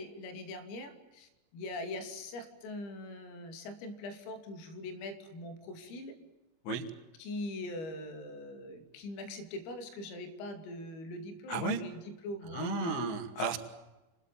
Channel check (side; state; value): right; late; 24 ms